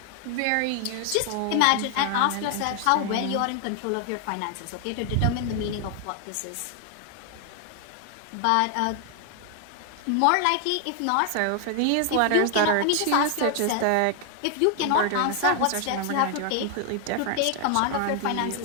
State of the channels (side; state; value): both; different; correlation 0.00